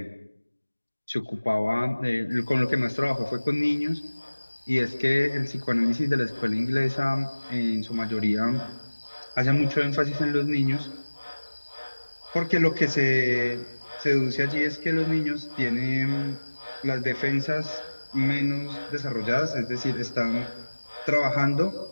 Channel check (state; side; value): inverted; both; correlation -1.00